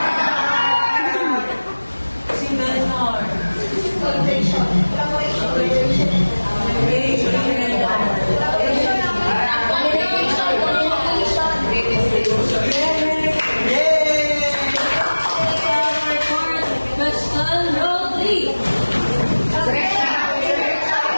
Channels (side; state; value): both; inverted; correlation -1.00